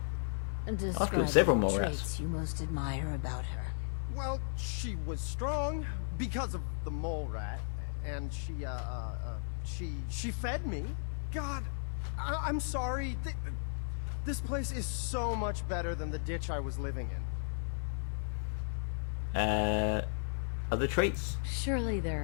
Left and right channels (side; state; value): right; silent; 54 dB below the other